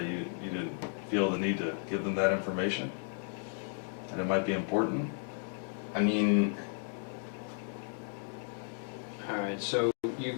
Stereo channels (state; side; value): silent; right; 55 dB below the other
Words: You didn't feel the need to give them that information? And it might be important? I mean... Alright, so you